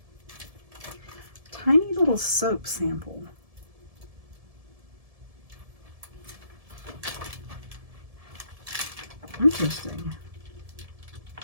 Tiny little soap sample. Interesting.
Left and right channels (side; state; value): left; late; 1.7 ms